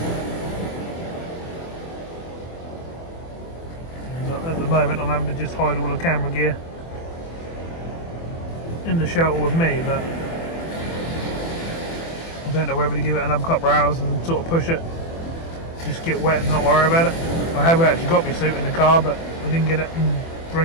At the moment, I'm having to just hide all the camera gear in the shelter with me, but I don't know whether to give it another couple of hours and sort of push it, just get wet and not worry about it. I have actually got my suit in the car, but I didn't get it and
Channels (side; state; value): right; late; 24 ms